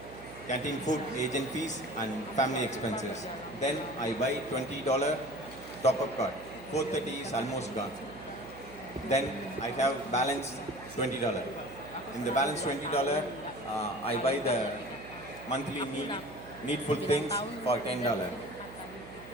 canteen food, agent fees and family expenses. Then I buy $20 top-up card. 430 is almost gone. Then I have balance $20. In the balance $20, I buy the monthly needful things for $10.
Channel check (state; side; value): noise; right; hum, 16 dB below the sound